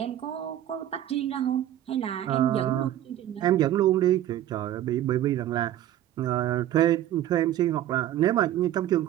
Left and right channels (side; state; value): left; quieter; 12.5 dB